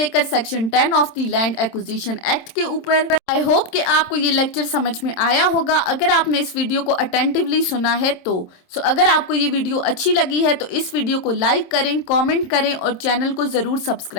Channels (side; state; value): right; late; 26 ms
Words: section 10 of the land acquisition act के ऊपर। आई होप कि आपको ये लेक्चर समझ में आया होगा। अगर आपने इस वीडियो को अटेंटिवली सुना है तो अगर आपको ये वीडियो अच्छी लगी है तो इस वीडियो को लाइक करें, कमेंट करें और चैनल को जरूर